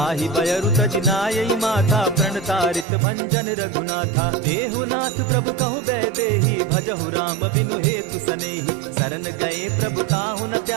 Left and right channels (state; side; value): drops out; left; at 2.9 s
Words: बयरु तज नायई माथा, प्रणतारित भंजन रघुनाथा। देहु नाथ प्रभु कहु बैदेही, भजहु राम बिनु हेतु सनेही। शरण गए प्रभु ताहु न